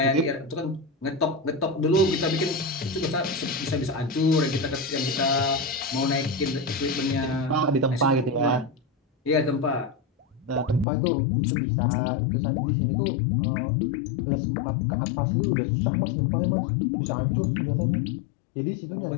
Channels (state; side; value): drops out; right; at 10.9 s